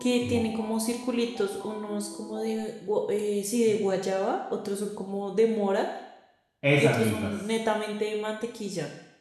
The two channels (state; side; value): identical; both; correlation 1.00